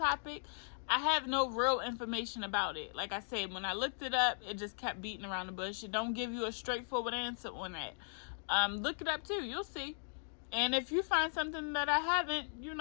I have no real information about it. Like I said, when I looked it up, it just kept beating around the bush. It don't give you a straightforward answer on that. Look it up too. You'll see. And if you find something that I haven't,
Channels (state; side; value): silent; right; digital silence